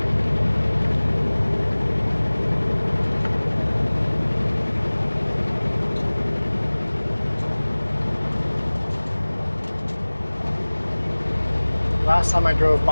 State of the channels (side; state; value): both; inverted; correlation -1.00